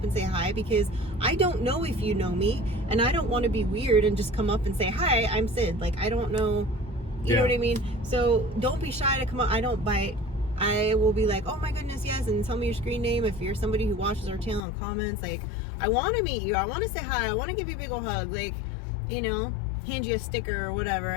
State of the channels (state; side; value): drops out; right; at 14.6 s